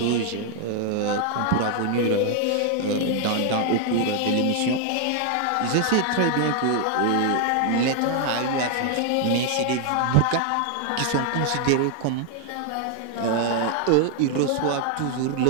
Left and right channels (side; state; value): both; different; correlation 0.00